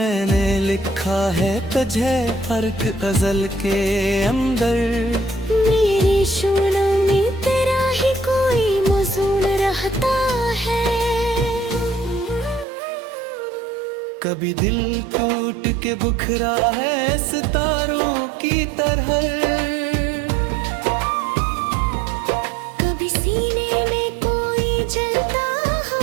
लिखा है तुझे फर्क गजल के अंदर। मेरे शूलों में तेरा ही कोई मौजून रहता है। कभी दिल टूट के बुखरा है सितारों की तरह। कभी सीने में कोई जलता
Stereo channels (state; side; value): drops out; left; at 12.7 s